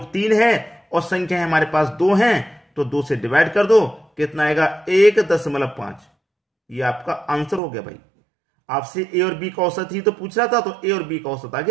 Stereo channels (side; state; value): left; drops out; at 7.6 s